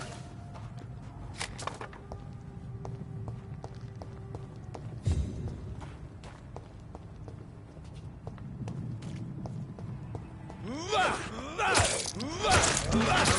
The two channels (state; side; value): identical; both; correlation 1.00